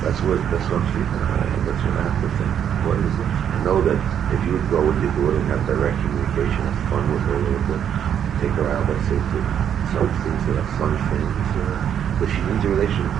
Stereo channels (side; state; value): left; quieter; 9.0 dB